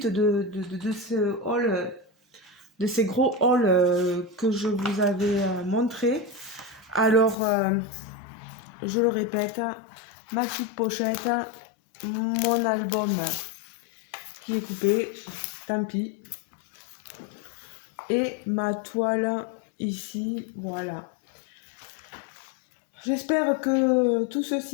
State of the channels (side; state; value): right; drops out; at 7.4 s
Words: de ce haul, de ces gros hauls que je vous avais montré. Alors, je le répète, ma petite pochette, mon album qui est coupé, tant pis, et ma toile ici, voilà. J'espère que tout